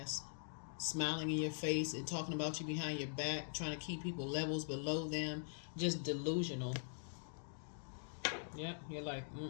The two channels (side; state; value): right; silent; digital silence